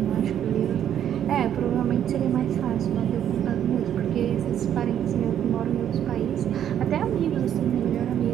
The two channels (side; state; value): left; quieter; 10.0 dB